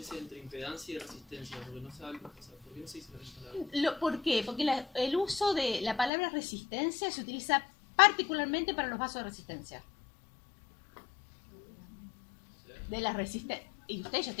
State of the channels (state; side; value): drops out; right; at 6.1 s